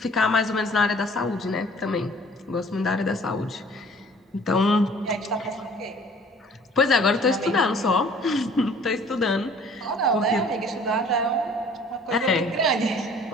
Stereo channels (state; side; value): normal; both; correlation 0.53